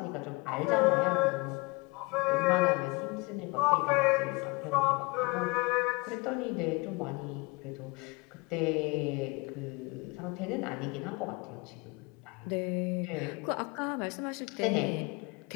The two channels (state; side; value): quieter; right; 27.2 dB